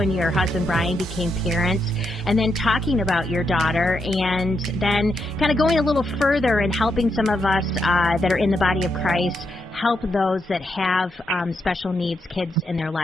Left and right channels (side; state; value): both; normal; correlation 0.81